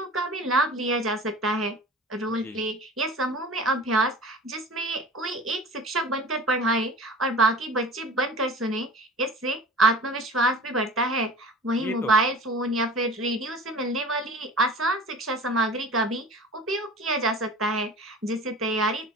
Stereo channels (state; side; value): normal; both; correlation 0.39